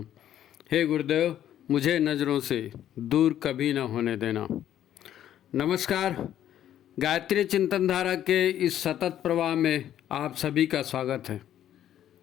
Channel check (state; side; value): quieter; right; 11.2 dB